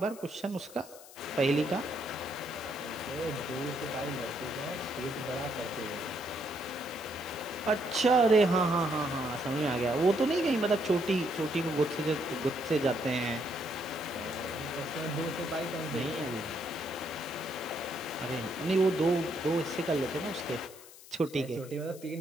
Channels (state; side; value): noise; left; hiss, 19 dB below the sound